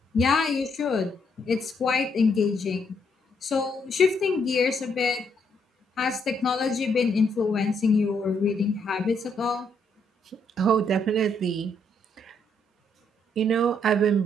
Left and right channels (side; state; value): both; normal; correlation 0.73